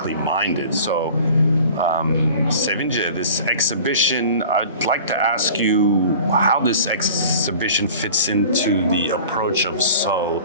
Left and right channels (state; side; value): inverted; both; correlation -0.43